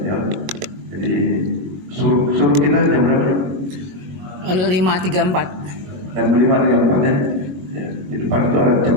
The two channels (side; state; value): left; late; 21 ms